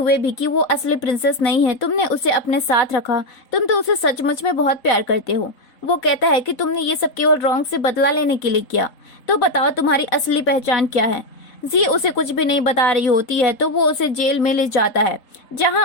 भी कि वो असली प्रिंसेस नहीं है, तुमने उसे अपने साथ रखा, तुम तो उसे सचमुच में बहुत प्यार करते हो। वो कहता है कि तुमने ये सब केवल रोंग से बदला लेने के लिए किया, तो बताओ तुम्हारी असली पहचान क्या है। जी उसे कुछ भी नहीं बता रही होती है तो वो उसे जेल में ले जाता है, जहां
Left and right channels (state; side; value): late; right; 3.7 ms